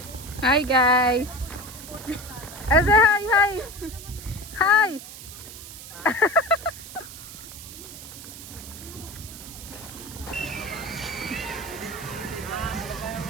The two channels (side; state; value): right; noise; hiss, 13 dB below the sound